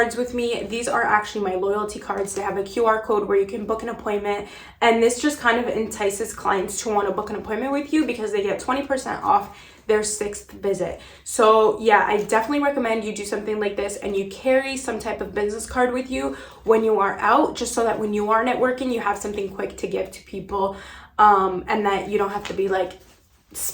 with me. These are actually my loyalty cards. They have a QR code where you can book an appointment. And this just kind of entices clients to want to book an appointment with you because they get 20% off their 6th visit. So yeah, I definitely recommend you do something like this and you carry some type of business card with you when you are out, just so that when you are networking, you have something quick to give to people. And that you don't have to be like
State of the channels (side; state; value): both; identical; correlation 1.00